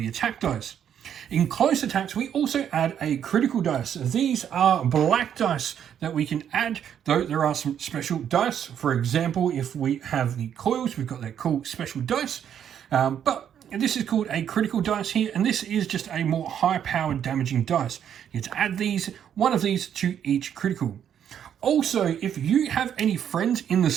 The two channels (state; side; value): quieter; left; 9.2 dB